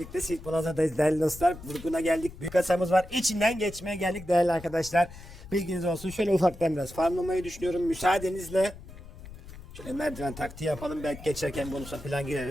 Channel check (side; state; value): left; noise; rumble, 16 dB below the sound